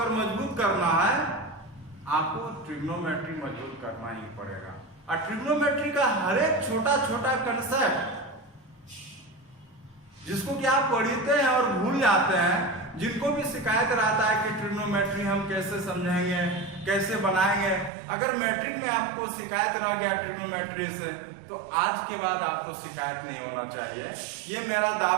मजबूत करना है, आपको ट्रिग्नोमेट्री मजबूत करना ही पड़ेगा। और ट्रिग्नोमेट्री का हर एक छोटा छोटा कंसेप्ट जिसको कि आप पढ़ते हैं और भूल जाते हैं, जिनको भी शिकायत रहता है कि ट्रिग्नोमेट्री हम कैसे समझेंगे, कैसे बनाएंगे, अगर मैट्रिक में आपको शिकायत रह गया ट्रिग्नोमेट्री से, तो आज के बाद आपको शिकायत नहीं होना चाहिए। ये मेरा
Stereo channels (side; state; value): left; drops out; at 17.9 s